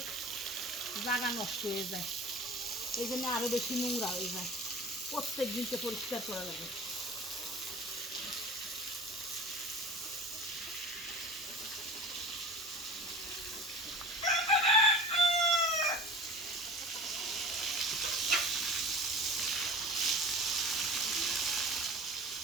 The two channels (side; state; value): both; normal; correlation 0.39